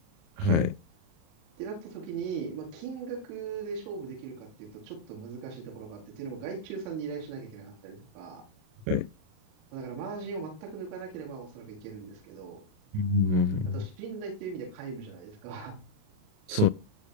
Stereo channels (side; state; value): left; late; 38 ms